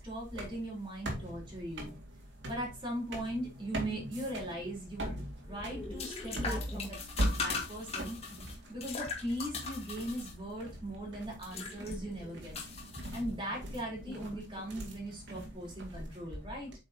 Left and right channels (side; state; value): both; normal; correlation 0.57